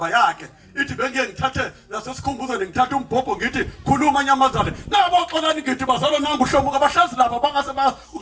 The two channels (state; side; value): identical; both; correlation 1.00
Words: yakhe ithi bengiye ngithathe nasesikhumbuzo ngithathe umbhobho ngithi khuluma nyamazana nabo oqolani ngithi bazalo nangu hlomuka bahlezi lapha bangase